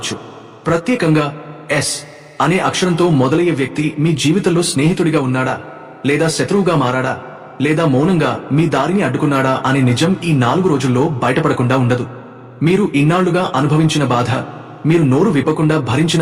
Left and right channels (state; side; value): identical; both; correlation 1.00